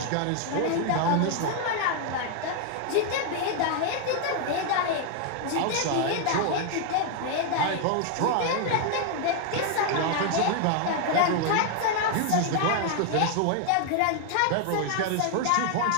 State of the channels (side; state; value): both; different; correlation 0.00